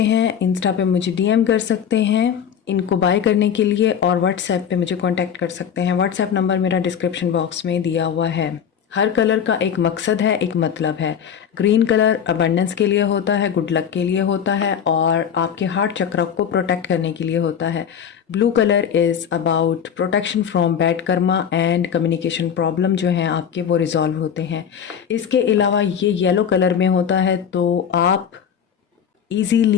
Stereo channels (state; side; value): quieter; right; 8.1 dB